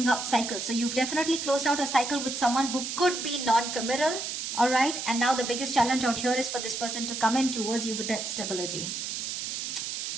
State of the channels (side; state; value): right; noise; hiss, 4 dB below the sound